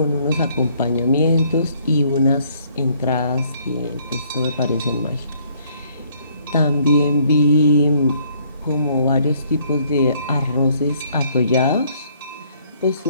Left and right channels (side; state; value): both; inverted; correlation -0.65